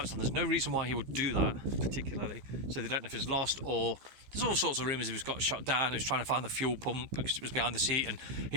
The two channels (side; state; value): left; late; 15 ms